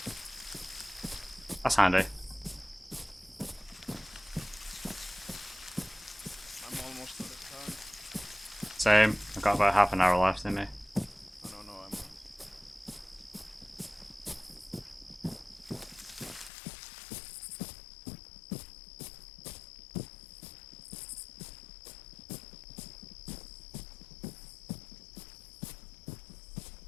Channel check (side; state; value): right; drops out; at 16.5 s